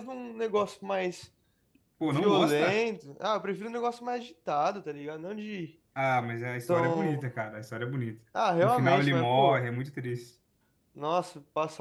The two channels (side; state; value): both; identical; correlation 1.00